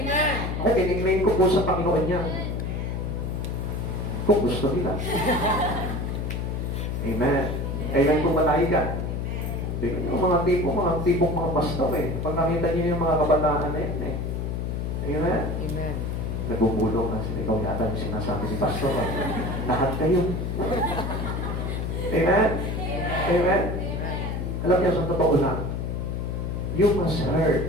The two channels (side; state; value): left; noise; hum, 2 dB below the sound